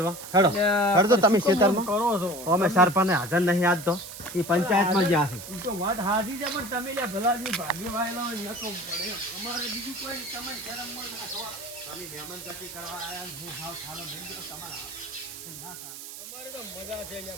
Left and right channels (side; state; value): right; noise; hiss, 12 dB below the sound